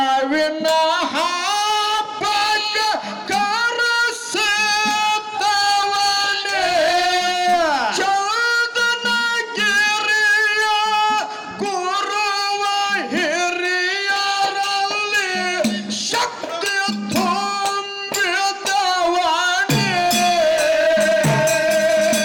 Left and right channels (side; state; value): both; identical; correlation 1.00